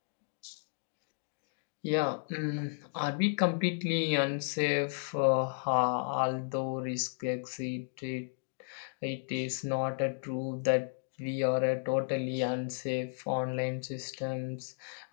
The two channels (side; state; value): right; silent; digital silence